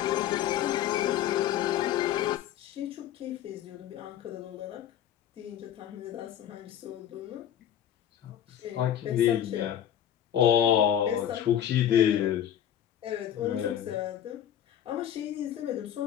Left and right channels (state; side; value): quieter; right; 10.5 dB